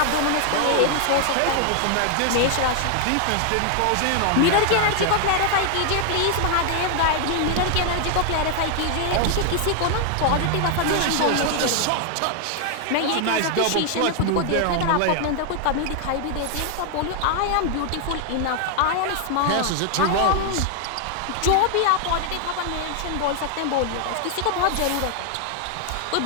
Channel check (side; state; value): both; different; correlation 0.00